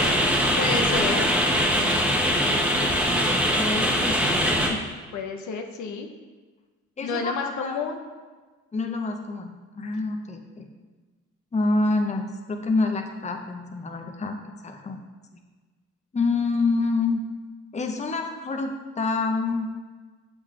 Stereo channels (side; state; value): both; normal; correlation 0.48